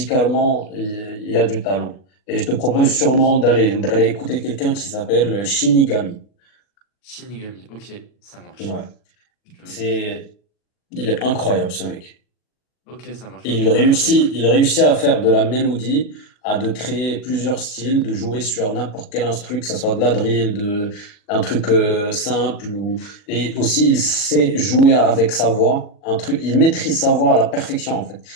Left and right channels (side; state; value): right; late; 40 ms